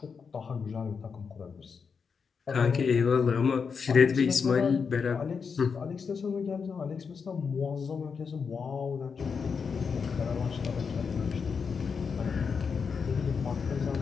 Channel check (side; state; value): right; quieter; 5.8 dB